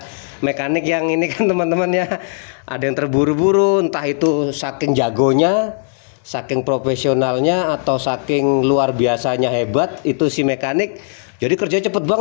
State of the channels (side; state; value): right; silent; 68 dB below the other